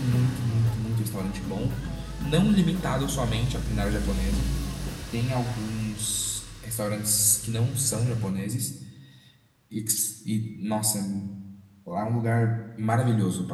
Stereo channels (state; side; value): identical; both; correlation 1.00